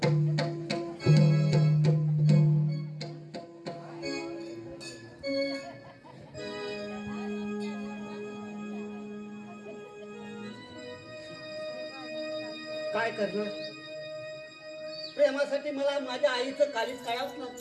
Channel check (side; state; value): both; identical; correlation 1.00